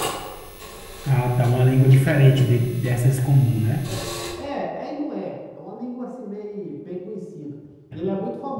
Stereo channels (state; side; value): identical; both; correlation 1.00